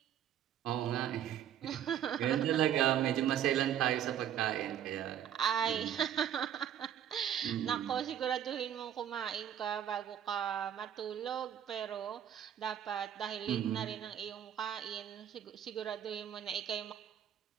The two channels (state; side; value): quieter; left; 10.0 dB